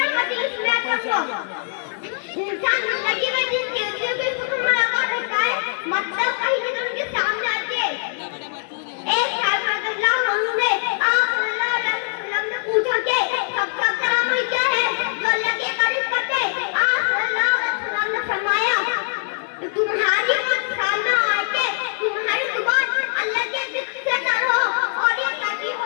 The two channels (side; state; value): right; silent; 56 dB below the other